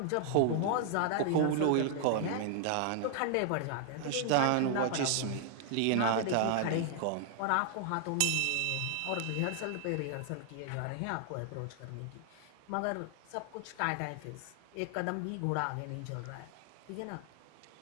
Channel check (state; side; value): different; both; correlation 0.00